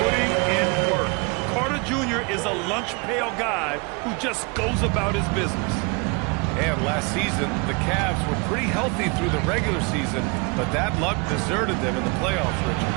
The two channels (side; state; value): left; quieter; 30.2 dB